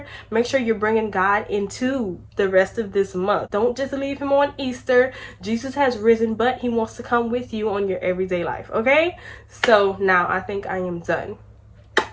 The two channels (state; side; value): identical; both; correlation 1.00